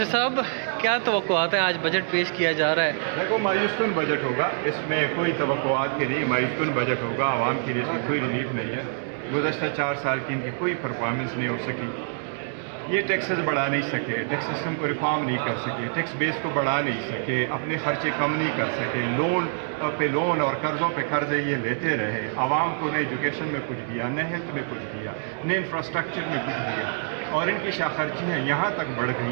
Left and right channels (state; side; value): silent; left; digital silence